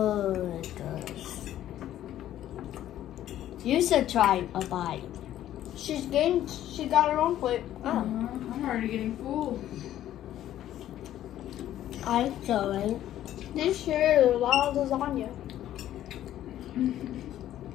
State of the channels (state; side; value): quieter; right; 12.4 dB